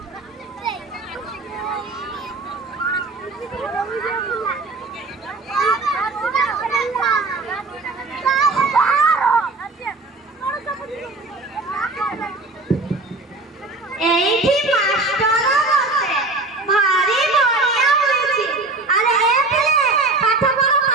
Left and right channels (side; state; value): left; quieter; 3.3 dB